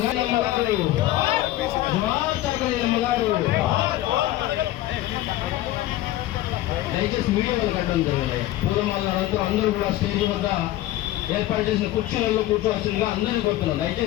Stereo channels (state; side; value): quieter; right; 15.2 dB